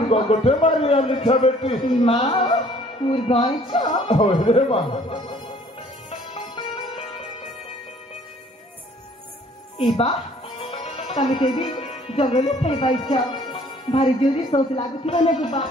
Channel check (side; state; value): both; normal; correlation 0.57